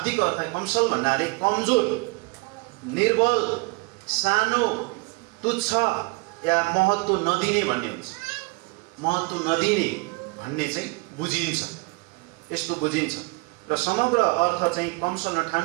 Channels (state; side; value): quieter; left; 27.8 dB